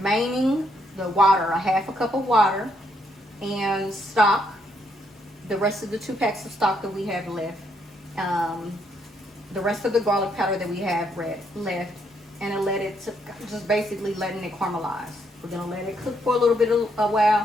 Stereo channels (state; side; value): normal; both; correlation 0.74